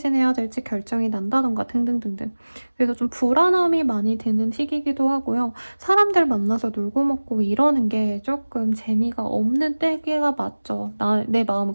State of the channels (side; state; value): both; inverted; correlation -1.00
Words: 될지 결정이 난다던가 등등등등. 그래서 좀 불안함이 많이 드는 시기이기도 하고요. 사람들 만나서 놀고 먹고 이러는 게 조금 재미가 없는 때가 맞죠. 내 마음은